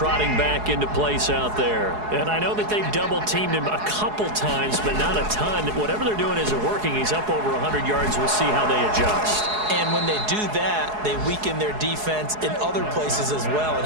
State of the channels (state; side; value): late; left; 4.7 ms